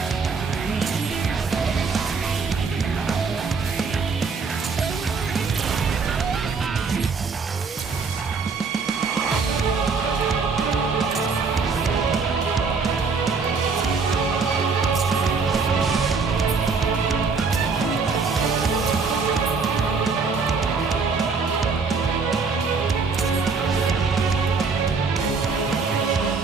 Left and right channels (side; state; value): left; quieter; 4.8 dB